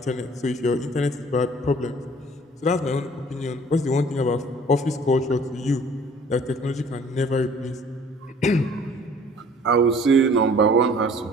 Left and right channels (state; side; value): normal; both; correlation 0.52